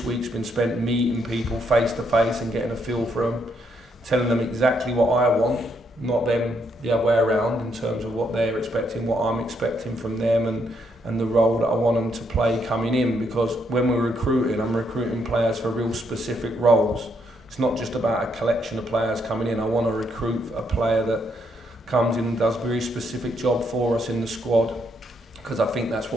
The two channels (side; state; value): both; normal; correlation 0.75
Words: week's been spent meeting people face to face and getting a feel for them, telling them exactly what I want, not them the other way around in terms of what they're expecting, what I'm expecting from them, and the role that I want them to play coming in. Because when we're recruiting, I'm recruiting players for real specific roles. It's not just about a collection of players coming in. I want to recruit a player that comes in and does a very specific job for us in the squad, because I think that's